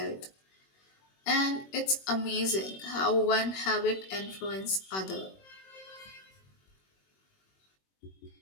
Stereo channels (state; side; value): late; right; 21 ms